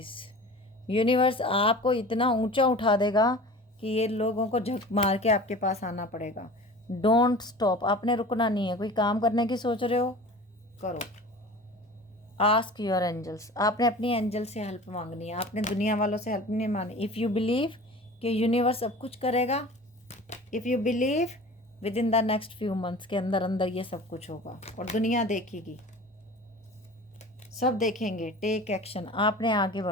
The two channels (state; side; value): normal; both; correlation 0.39